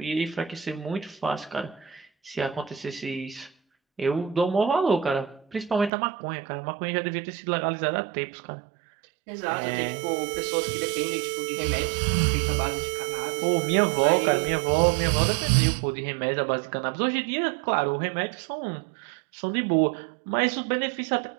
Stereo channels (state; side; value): drops out; left; at 5.9 s